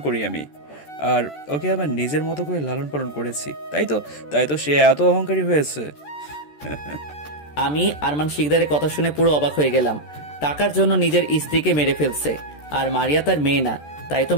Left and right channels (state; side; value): late; right; 14 ms